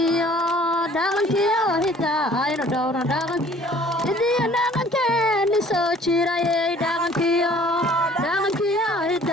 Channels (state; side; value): normal; both; correlation 0.54